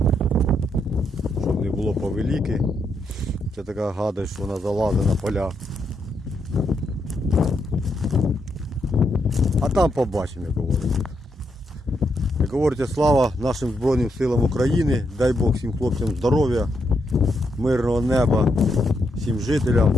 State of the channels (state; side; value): normal; both; correlation 0.79